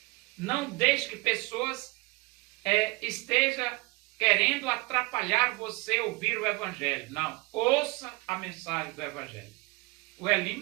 Não deixe que pessoas estejam querendo atrapalhar você ouvir o Evangelho. Não, ouça a mensagem do Evangelho. O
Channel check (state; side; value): quieter; left; 25.8 dB